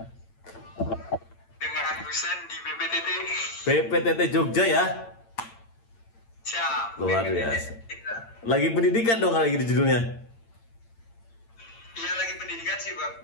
Dengan Husen di BPTT. BPTT Jogja ya? Siap. Luar biasa. Lagi pendidikan dong kalau gitu judulnya. Iya, lagi pendidikan sih,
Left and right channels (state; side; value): late; right; 8.8 ms